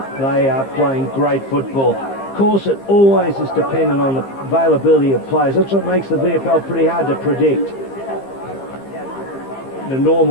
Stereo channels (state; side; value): late; right; 15 ms